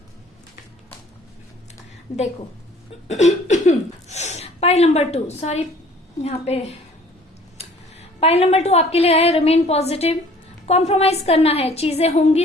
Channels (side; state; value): both; normal; correlation 0.53